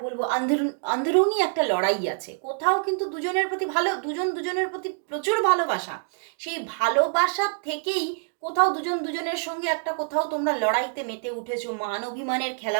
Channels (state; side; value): silent; left; digital silence